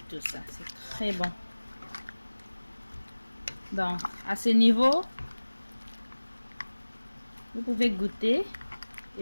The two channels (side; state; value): both; inverted; correlation -1.00